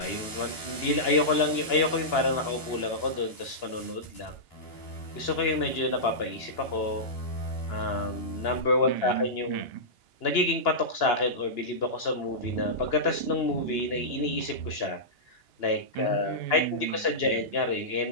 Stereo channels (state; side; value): late; right; 2.9 ms